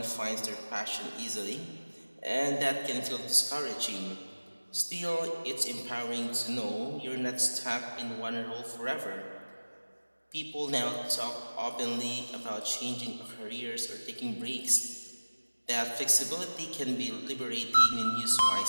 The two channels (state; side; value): inverted; both; correlation -1.00